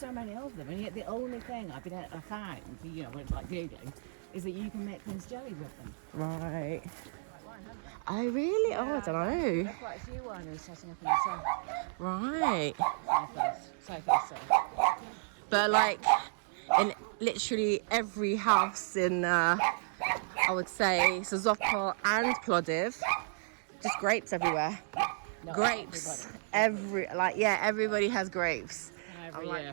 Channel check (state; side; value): silent; left; digital silence